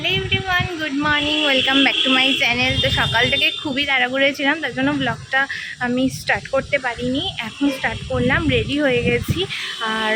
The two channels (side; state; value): both; identical; correlation 1.00